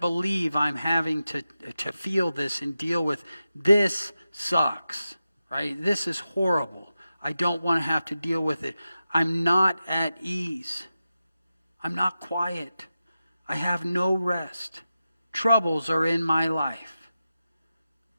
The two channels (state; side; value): inverted; both; correlation -0.92